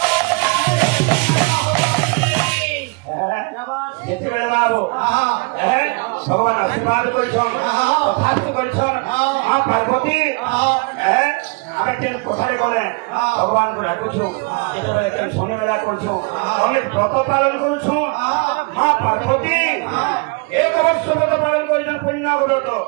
যেତେବେଳେ ବାବୁ ଭଗବାନ ଆଶୀର୍ବାଦ କରିଛନ୍ କଥାସ୍ତ କରିଛନ୍ ମା ପାର୍ବତୀ ଆମେ କେନ୍ କଥାରେ ଗଲେ ଭଗବାନଙ୍କୁ ଡାକୁଛୁ ଯେତେବେଳେ କେନ୍ ଶନିବେଳା କରୁଛୁ ଅନେକ ବ୍ରତ ପାଳନ କରୁଛୁ ମା ପାର୍ବତୀ ଏକ ବର୍ଷ ବ୍ରତ ପାଳନ କରିଛନ୍ ପୁଣ୍ୟ ବ୍ରତ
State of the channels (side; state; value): left; quieter; 30.1 dB